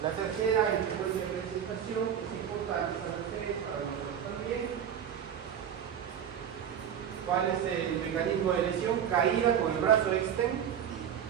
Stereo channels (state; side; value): quieter; left; 8.8 dB